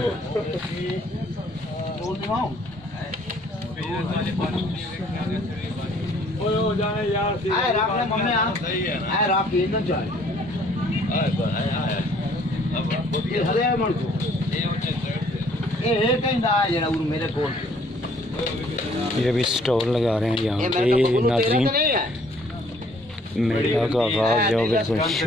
ये अभी स्टॉल लगा रहे हैं यहाँ पे नाज़रीन। मेला का आगाज़ जो बिल्कुल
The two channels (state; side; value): normal; both; correlation 0.60